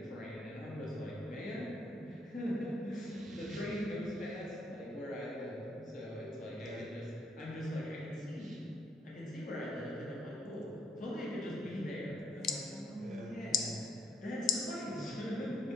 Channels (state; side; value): normal; both; correlation 0.73